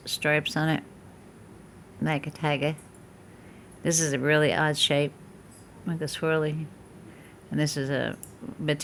stripes on it, like a tiger. This is a really odd shape, like a swirly. And this is a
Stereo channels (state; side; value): identical; both; correlation 1.00